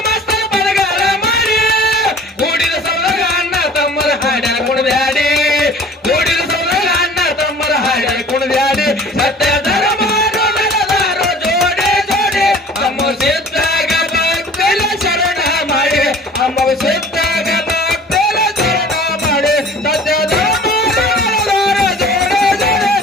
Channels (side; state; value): both; normal; correlation 0.47